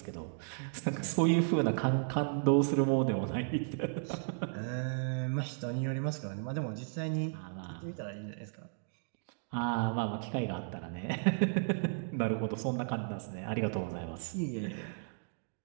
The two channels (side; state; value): left; silent; digital silence